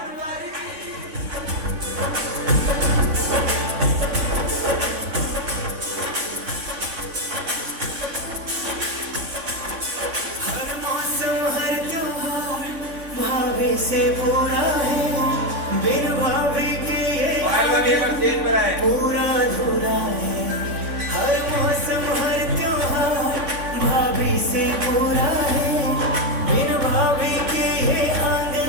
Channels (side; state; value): left; late; 3.5 ms